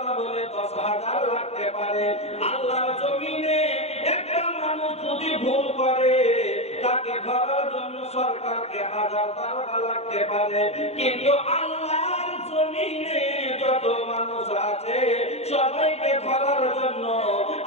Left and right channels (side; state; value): right; late; 0.31 ms